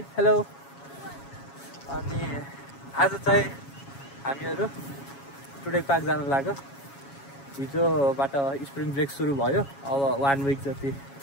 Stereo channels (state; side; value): late; right; 7.2 ms